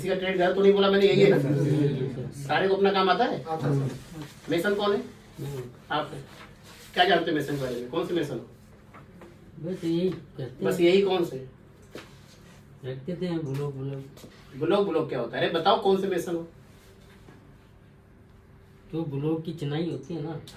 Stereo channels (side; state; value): both; identical; correlation 1.00